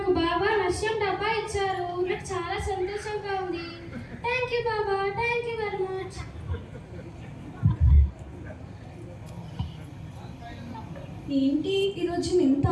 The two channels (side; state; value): both; identical; correlation 1.00